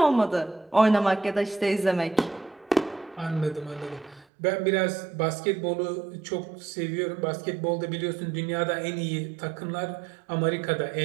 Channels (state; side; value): drops out; left; at 4.2 s